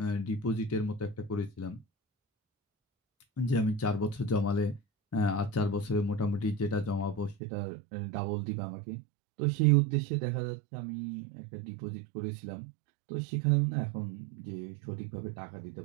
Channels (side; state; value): left; drops out; at 7.4 s